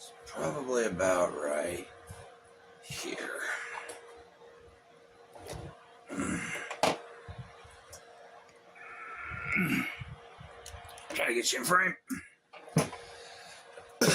probably about right here. Try to get you in frame.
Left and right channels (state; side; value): identical; both; correlation 1.00